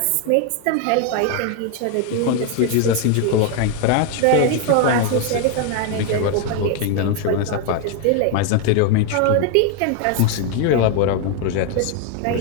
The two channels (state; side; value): different; both; correlation 0.01